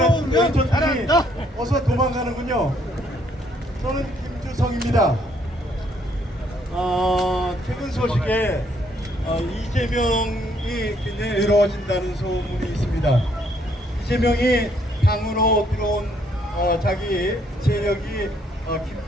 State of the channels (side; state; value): both; normal; correlation 0.68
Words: 한 왼손들이 어서 도망가는군요. 저는 김주성입니다. 최근 소식에 이재명이 굉장히 외로워진다는 소문이 있습니다. 이재명이 당으로 들어온 자기 세력이